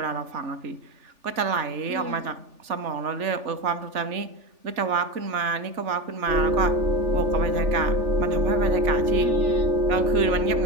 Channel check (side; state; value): left; late; 3.4 ms